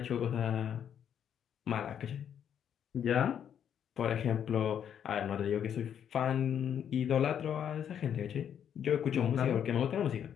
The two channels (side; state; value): right; quieter; 8.9 dB